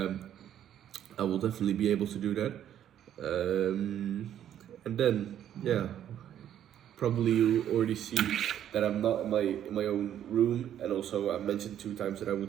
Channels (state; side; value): quieter; left; 10.5 dB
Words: will definitely be able to do that. And then yeah, probably you already see that I'm not in my own room, and also I mentioned 2 times that I